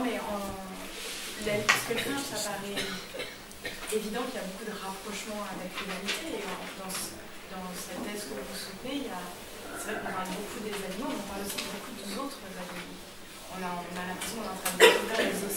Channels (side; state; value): both; identical; correlation 1.00